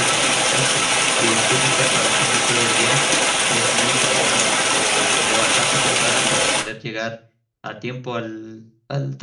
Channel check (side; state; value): both; identical; correlation 1.00